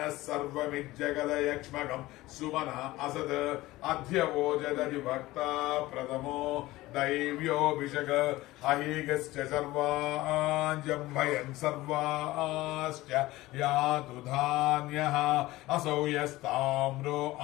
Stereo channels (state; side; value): quieter; right; 18.2 dB